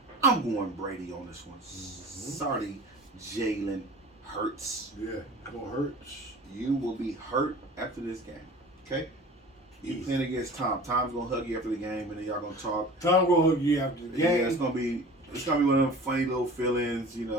I'm going Brady on this one. Sorry, Jalen Hurts. Yeah, gonna hurt. You will be hurt after this game. Okay? You Easy. playing against Tom. Tom's gonna hug you after the game, and then y'all gonna talk. Tom gonna hook you after the Yeah, game. it's gonna be one of them funny little feelings. You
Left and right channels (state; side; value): normal; both; correlation 0.41